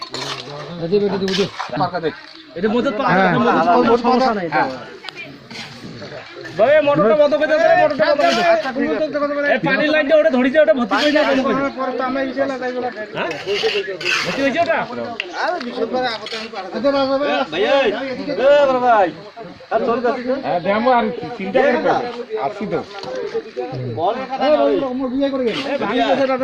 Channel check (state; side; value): identical; both; correlation 1.00